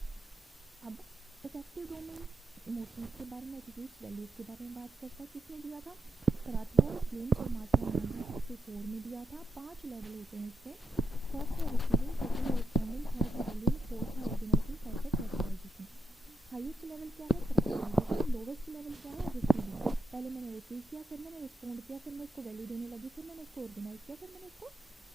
अब इफेक्टिव डोमेन इमोशंस के बारे में, एटीट्यूड्स, वैल्यूज के बारे में बात करता है। किसने दिया था, कराथवोल, फ्लेम्स और मार्शल 1964 में दिया था। 5 लेवल होते हैं इसके, फर्स्ट है रिसीविंग, सेकंड है रिस्पॉन्डिंग, थर्ड है वैल्यूइंग, फोर्थ है ऑर्गेनाइजिंग, फिफ्थ है करेक्टराइजेशन। हाईएस्ट लेवल क्या है, करेक्टराइजेशन। लोवेस्ट लेवल क्या है, रिसीविंग। पहले मैंने रिसीव किया, फिर मैंने रिस्पॉन्ड किया, फिर मैं उसको वैल्यू देने लगी, फिर मैंने उसको ऑर्गेनाइज किया, फिर मैंने उसको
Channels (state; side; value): normal; both; correlation 0.80